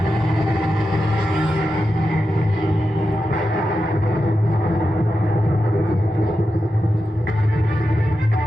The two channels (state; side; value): normal; both; correlation 0.90